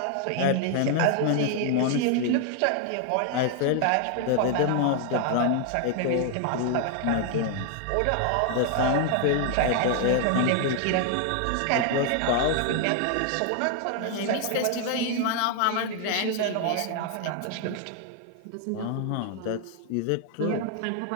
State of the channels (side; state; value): both; different; correlation 0.00